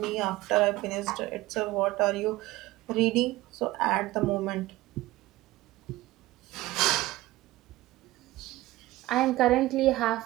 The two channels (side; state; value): left; quieter; 17.9 dB